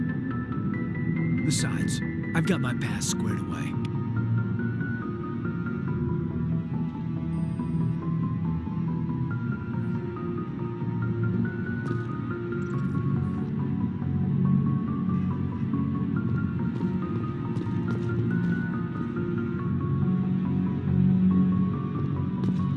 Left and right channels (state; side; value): identical; both; correlation 1.00